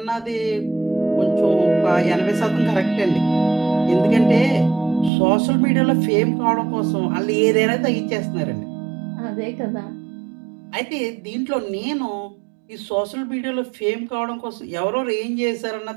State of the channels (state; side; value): drops out; left; at 5.1 s